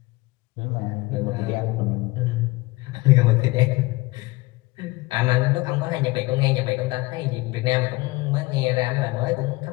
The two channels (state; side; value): quieter; right; 22.1 dB